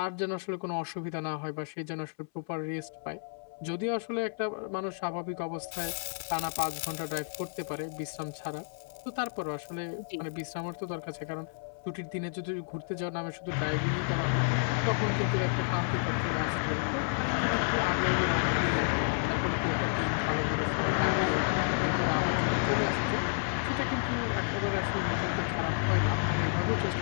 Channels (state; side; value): silent; right; 57 dB below the other